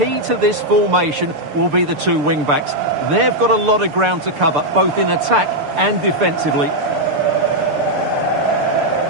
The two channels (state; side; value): late; left; 6.8 ms